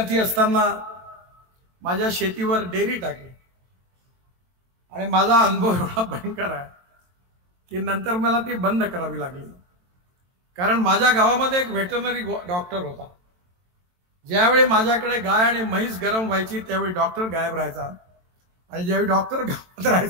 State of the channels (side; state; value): left; late; 22 ms